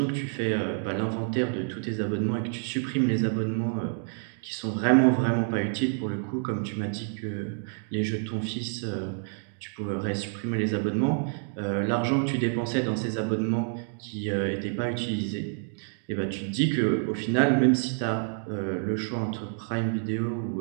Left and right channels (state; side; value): silent; left; 59 dB below the other